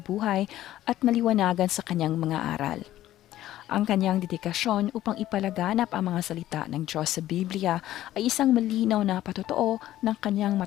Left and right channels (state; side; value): quieter; right; 13.8 dB